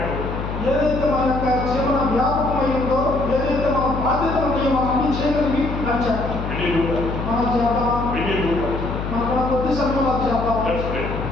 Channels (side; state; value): left; noise; hum, 5 dB below the sound